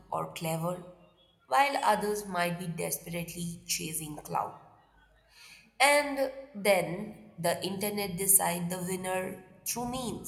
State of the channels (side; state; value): both; identical; correlation 1.00